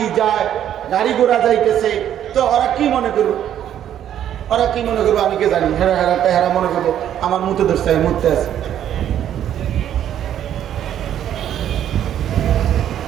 যায়, গাড়ি ঘোড়া যাইতেছে, তো ওরা কি মনে করবো? ওরা কি মনে করবো আমি কে জানি? হেরা হেরা হেরা মনে করবো আমার মুতে ধরছে, মুতে আছে।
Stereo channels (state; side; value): quieter; left; 10.5 dB